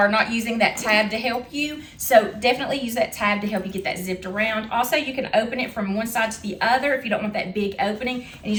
not using that tab to help you. So definitely use that tab to help you get that zipped around. Also, you can open it from one side to the other if you don't want that big opening and you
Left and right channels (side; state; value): both; identical; correlation 1.00